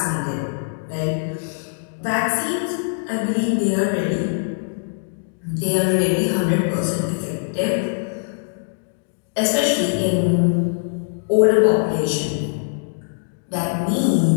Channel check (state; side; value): silent; right; digital silence